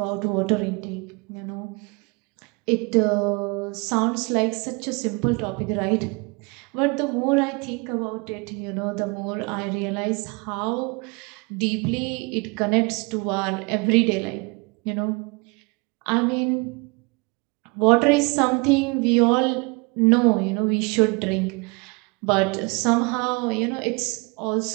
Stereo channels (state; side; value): quieter; left; 30.1 dB